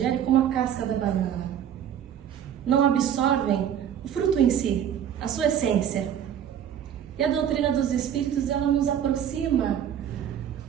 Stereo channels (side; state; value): left; quieter; 9.4 dB